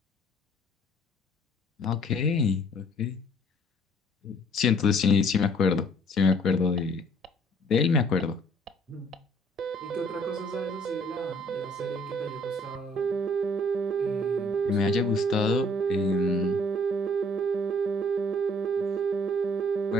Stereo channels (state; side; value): normal; both; correlation 0.58